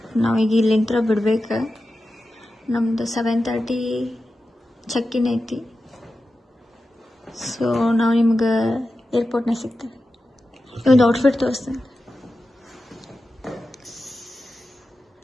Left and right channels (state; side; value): normal; both; correlation 0.92